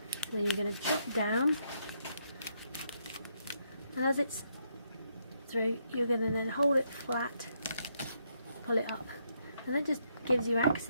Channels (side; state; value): both; inverted; correlation -0.76